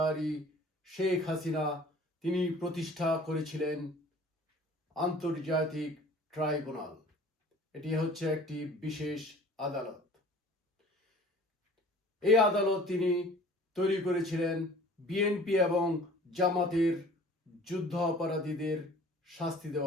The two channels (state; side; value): normal; both; correlation 0.48